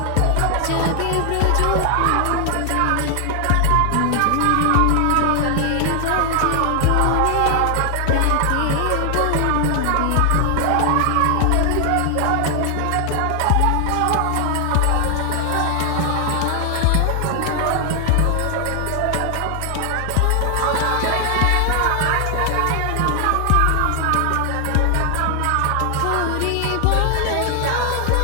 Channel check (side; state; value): both; different; correlation 0.00